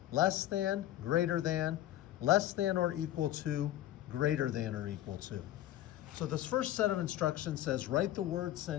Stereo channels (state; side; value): quieter; right; 13.6 dB